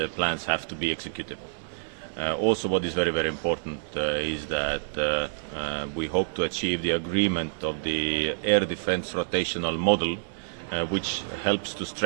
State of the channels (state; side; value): silent; left; digital silence